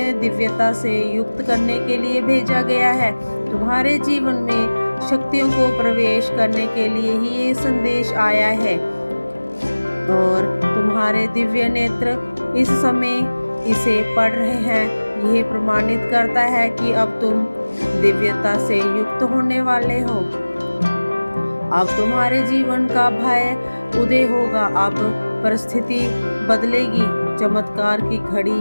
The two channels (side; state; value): both; inverted; correlation -1.00